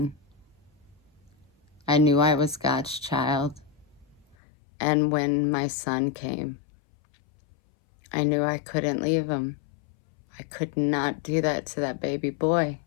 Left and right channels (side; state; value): right; drops out; at 4.4 s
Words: I knew I was God's child. And when my son came, I knew I couldn't leave him. I could not do that to that baby boy.